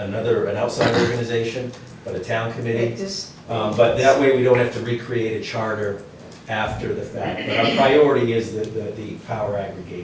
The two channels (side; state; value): both; identical; correlation 1.00